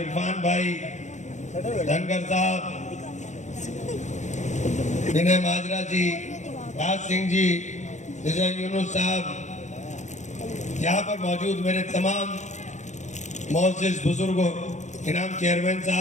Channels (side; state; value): right; late; 0.34 ms